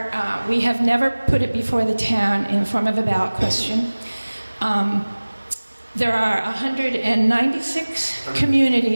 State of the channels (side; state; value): both; inverted; correlation -1.00